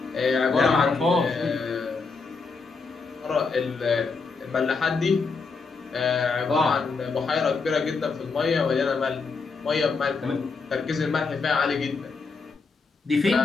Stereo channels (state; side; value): quieter; right; 4.5 dB